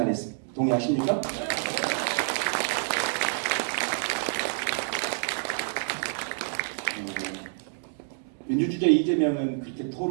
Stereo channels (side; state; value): left; silent; 59 dB below the other